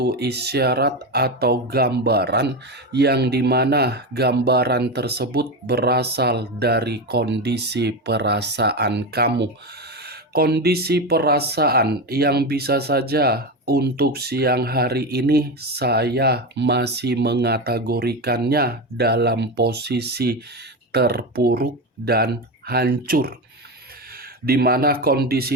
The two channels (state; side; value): normal; both; correlation 0.17